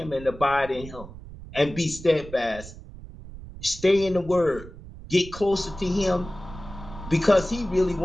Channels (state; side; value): noise; right; rumble, 14 dB below the sound